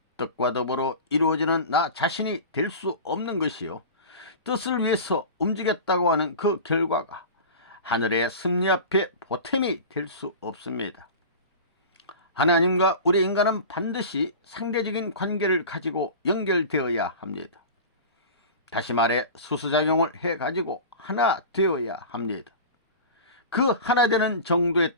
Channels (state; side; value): inverted; both; correlation -0.33